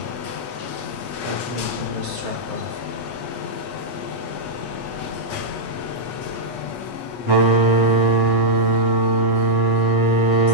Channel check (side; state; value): right; late; 8.4 ms